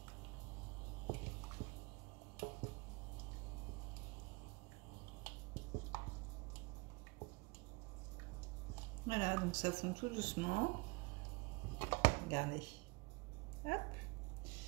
Voilà, donc ça fond tout doucement. Regardez. Hop.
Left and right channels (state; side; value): quieter; left; 27.4 dB